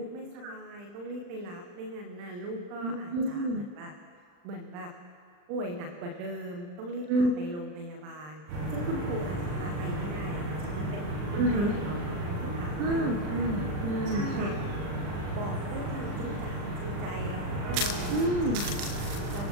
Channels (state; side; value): late; left; 40 ms